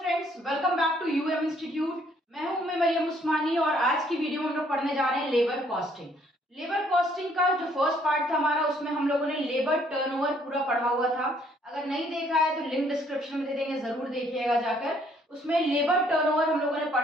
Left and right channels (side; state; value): both; normal; correlation 0.65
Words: Friends, welcome back to UM institute. मैं हूं मरियम उस्मानी और आज की वीडियो में हम लोग पढ़ने जा रहे हैं लेबर कॉस्टिंग। लेबर कॉस्टिंग का जो फर्स्ट पार्ट था हमारा, उसमें हम लोगों ने लेबर टर्नओवर पूरा पढ़ा हुआ था। अगर नहीं देखा है तो लिंक डिस्क्रिप्शन में दे देंगे, जरूर देखिएगा जाकर। उसमें लेबर टर्नओवर हम लोगों ने